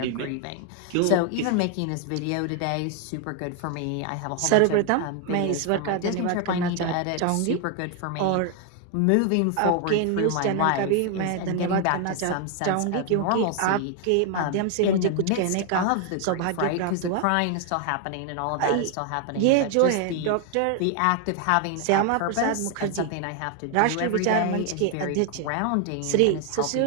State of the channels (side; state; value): both; different; correlation 0.00